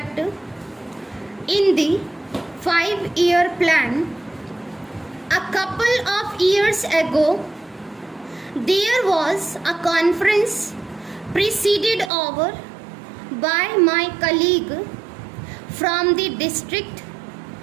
in the 5-year plan. A couple of years ago, there was a conference presided over by my colleague from the district,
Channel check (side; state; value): left; drops out; at 12.1 s